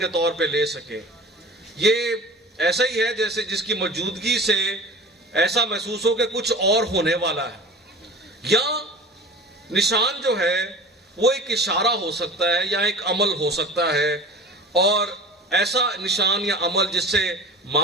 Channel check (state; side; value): normal; both; correlation 0.37